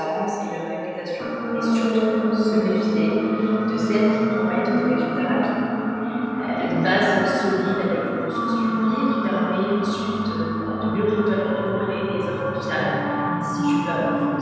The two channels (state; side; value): identical; both; correlation 1.00